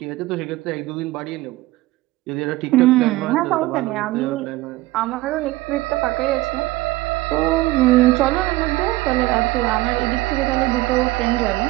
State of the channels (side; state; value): left; quieter; 18.6 dB